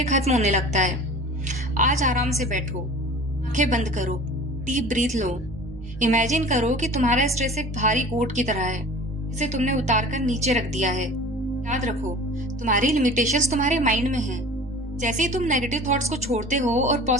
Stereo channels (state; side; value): normal; both; correlation 0.41